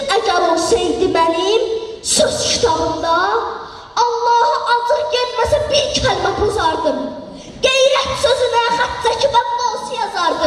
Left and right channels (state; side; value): identical; both; correlation 1.00